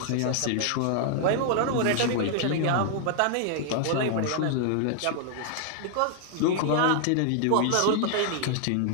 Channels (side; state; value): both; different; correlation 0.00